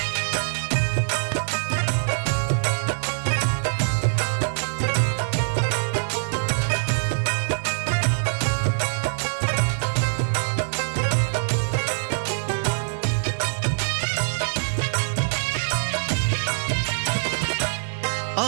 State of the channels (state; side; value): silent; left; digital silence